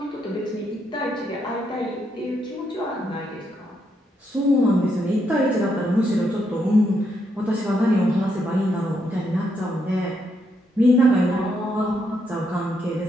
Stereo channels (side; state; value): both; normal; correlation 0.78